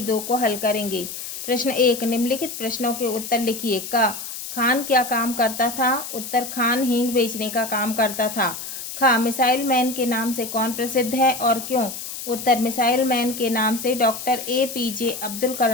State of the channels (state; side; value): noise; left; hiss, 8 dB below the sound